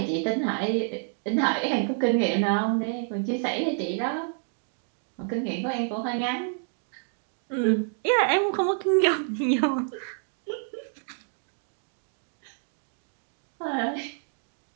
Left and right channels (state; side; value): silent; left; 59 dB below the other